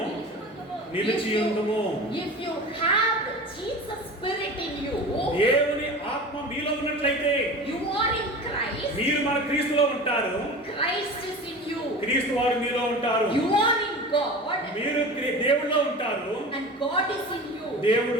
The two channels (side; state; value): both; normal; correlation 0.34